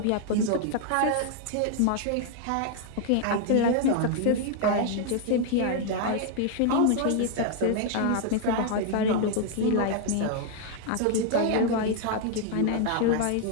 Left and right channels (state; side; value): different; both; correlation 0.00